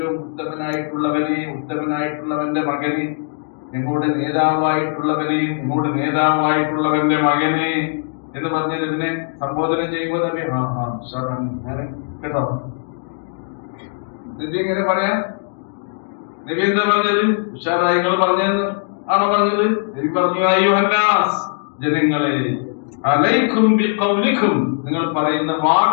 ഉത്തമനായിട്ടുള്ളവനെ, ഉത്തമനായിട്ടുള്ളവന്റെ മകനെ, ഞങ്ങളുടെ നേതാവായിട്ടുള്ളവനെയും ഞങ്ങളുടെ നേതാവായിട്ടുള്ളവന്റെ മകനെ എന്ന് പറഞ്ഞത് ഇതിനെ സംബോധന ചെയ്യുമ്പോൾ നബി കേട്ടോ. നബി എങ്ങനെ പറയാ? നബി എന്താ പറഞ്ഞത്? ഉഷാറായി നിങ്ങൾ പറഞ്ഞതെന്ന് ആണോ പറഞ്ഞത്? നബി പറഞ്ഞു, അയ്യുഹന്നാസ്, ജനങ്ങളെ, അലൈക്കും ബിഖൗലിക്കും, നിങ്ങൾ പറയുന്ന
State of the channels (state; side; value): silent; right; digital silence